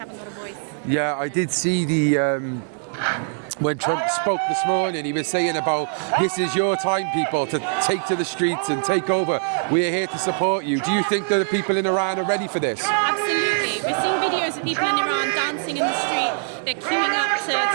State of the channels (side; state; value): left; silent; 60 dB below the other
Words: got a voice at the moment. I did see the when Trump spoke this morning, he was saying about this is your time, people, to take to the streets and take over. We're here to support you. Do you think that the people in Iran are ready for this? Absolutely. We're seeing videos of people in Iran dancing in the street. They're queuing up